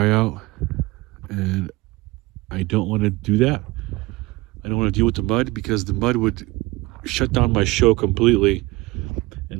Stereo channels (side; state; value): left; quieter; 21.1 dB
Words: out. And I don't want to do that. I don't want to deal with the mud, because the mud would shut down my show completely. And